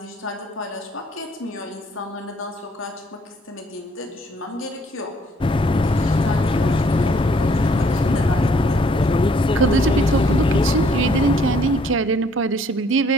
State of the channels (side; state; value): both; normal; correlation 0.64